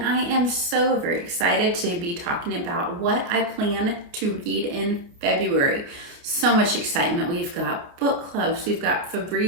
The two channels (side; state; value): left; late; 28 ms